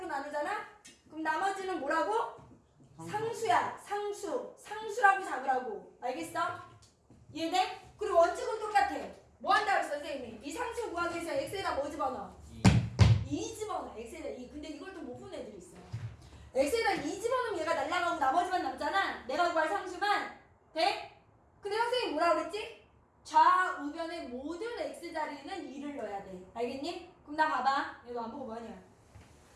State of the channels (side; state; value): both; identical; correlation 1.00